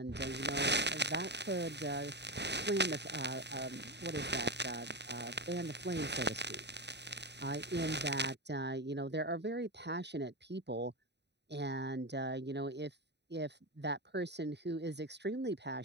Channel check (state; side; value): late; left; 0.50 ms